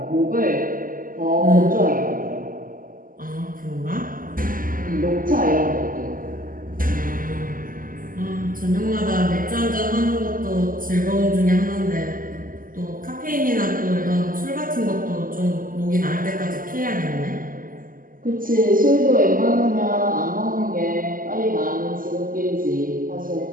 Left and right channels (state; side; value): late; left; 0.41 ms